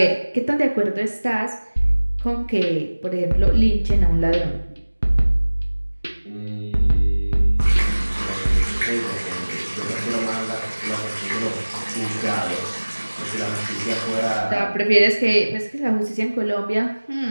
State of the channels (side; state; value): both; inverted; correlation -1.00